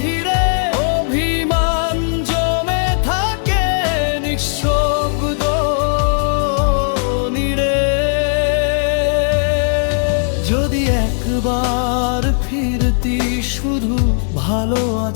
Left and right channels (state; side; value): silent; right; digital silence